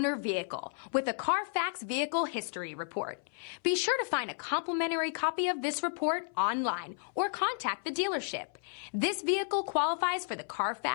vehicle with a Carfax Vehicle History Report. Be sure to find a complimentary copy of this report online or contact the dealership. This vehicle qualifies for the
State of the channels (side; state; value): right; silent; 56 dB below the other